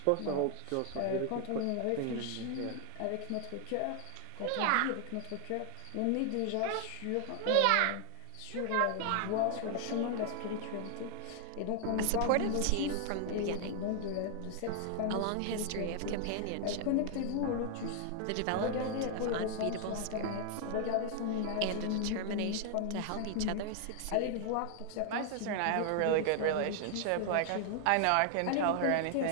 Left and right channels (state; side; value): different; both; correlation 0.00